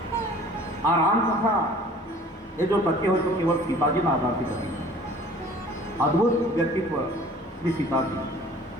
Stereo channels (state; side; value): normal; both; correlation 0.49